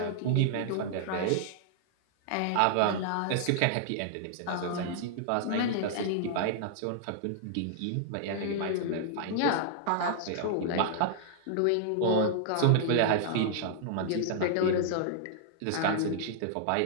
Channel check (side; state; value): both; different; correlation -0.01